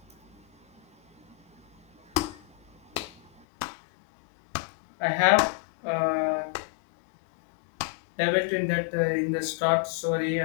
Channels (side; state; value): right; drops out; at 3.4 s